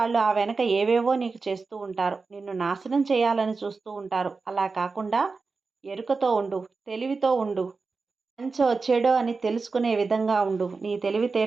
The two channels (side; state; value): left; quieter; 4.3 dB